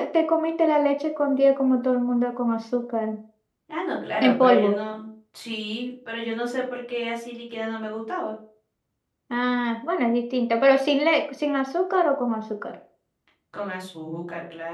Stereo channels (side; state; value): both; identical; correlation 1.00